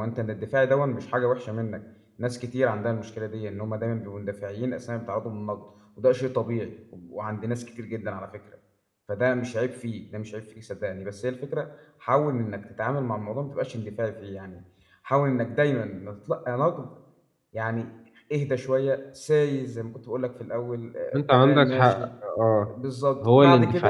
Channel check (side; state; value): both; identical; correlation 1.00